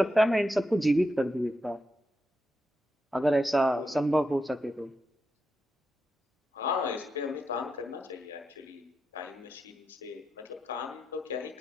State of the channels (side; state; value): both; normal; correlation 0.86